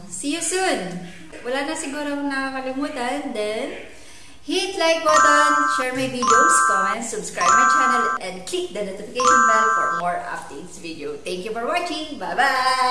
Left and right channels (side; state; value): both; identical; correlation 1.00